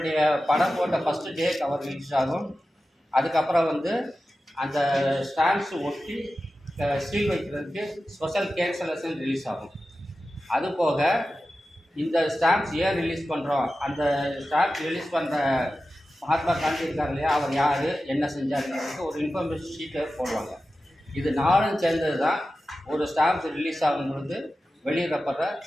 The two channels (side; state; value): both; normal; correlation 0.93